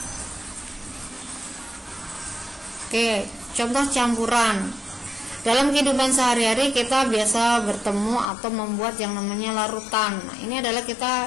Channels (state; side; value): drops out; right; at 8.2 s